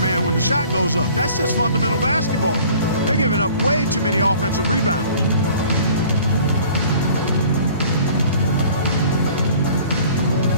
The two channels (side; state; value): both; inverted; correlation -0.50